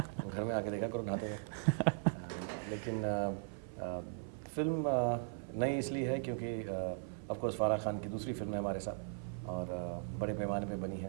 घर में आके देखा करो नहाते वक्त। लेकिन फिल्म नई इसलिए है क्योंकि ऑफ कोर्स फारा खान की दूसरी फिल्म है हमारे साथ और बड़े पैमाने पे बनी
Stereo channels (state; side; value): silent; left; 52 dB below the other